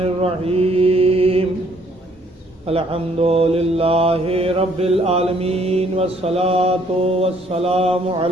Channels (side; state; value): both; normal; correlation 0.64